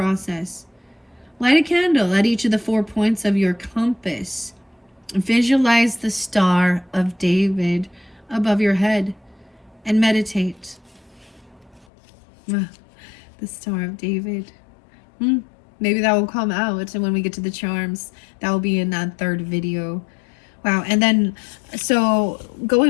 Light a candle at each of the 4 points of your compass. Visualize the Star of David above your head and meditate. The Star of David. Maybe that will come out when we get to the charms. That will be in that third video. Wow. And then, so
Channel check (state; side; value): drops out; right; at 11.9 s